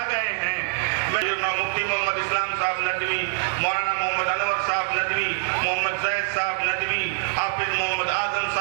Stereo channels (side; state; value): left; silent; 62 dB below the other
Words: گئے ہیں، مفتی محمد اسلام صاحب ندوی، مولانا محمد انور صاحب ندوی، محمد زید صاحب ندوی، حافظ محمد اعظم